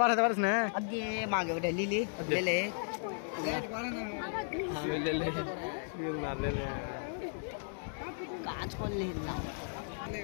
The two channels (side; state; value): right; silent; digital silence